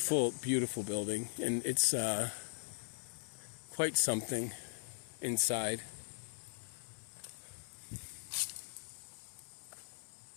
beautiful building, and it's quite something inside.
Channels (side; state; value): right; silent; 51 dB below the other